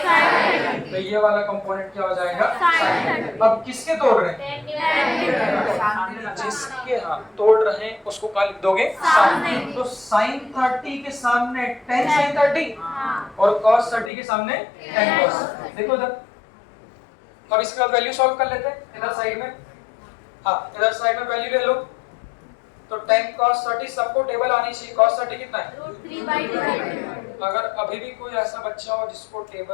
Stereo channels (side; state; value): right; drops out; at 14.1 s